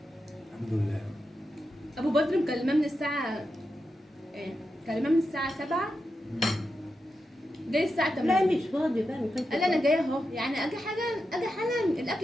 الحمد لله. ابو بدر مكلماه من الساعة ايه؟ مكلماه من الساعة 7 جاي الساعة 8. لا مش فاضي بقى ما كانش قال لي انا فاضي. جايه اهو، يعني اجي حالا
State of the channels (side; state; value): both; normal; correlation 0.88